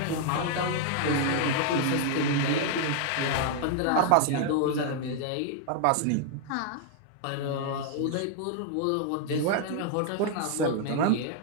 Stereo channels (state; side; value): different; both; correlation 0.00